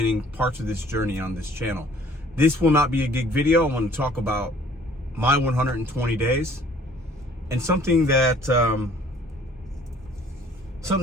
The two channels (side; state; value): both; normal; correlation 0.56